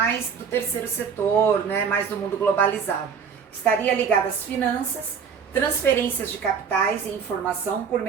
do terceiro setor, né? Mais do mundo globalizado. Estaria ligada às finanças, transferências de capitais e informação por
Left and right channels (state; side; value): quieter; left; 6.6 dB